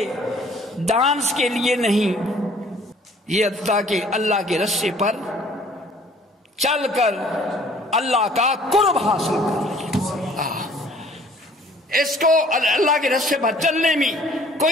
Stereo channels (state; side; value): normal; both; correlation 0.55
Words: ڈانس کے لیے نہیں، یہ تاکہ اللہ کے راستے پر چل کر اللہ کا قرب حاصل کر. اس کو اللہ کے راستے پر چلنے میں